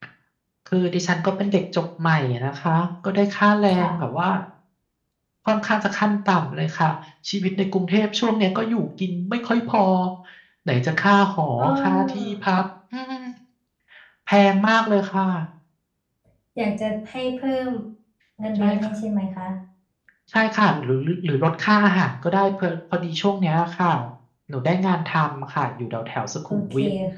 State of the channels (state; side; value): identical; both; correlation 1.00